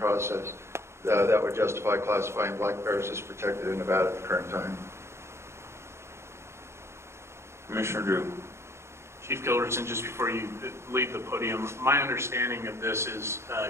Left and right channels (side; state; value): left; late; 0.13 ms